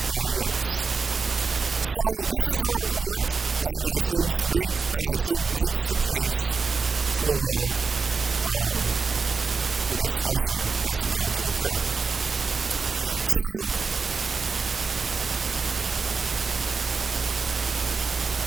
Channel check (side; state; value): left; quieter; 4.8 dB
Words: else. So this is a report that I think makes the case for the discussion that's about to occur. So